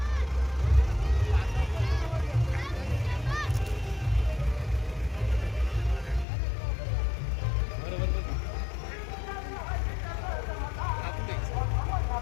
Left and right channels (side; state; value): right; drops out; at 6.2 s